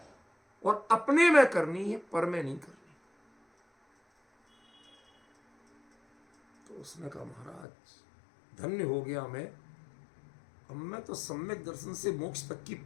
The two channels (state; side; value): drops out; right; at 7.7 s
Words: और अपने में करनी है, पर में नहीं करनी। तो उसने कहा महाराज धन्य हो गया मैं, अब मैं तो सम्यक दर्शन से मोक्ष तक की